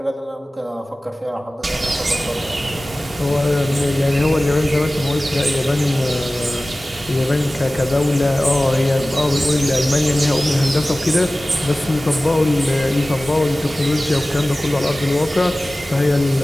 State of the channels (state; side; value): normal; both; correlation 0.97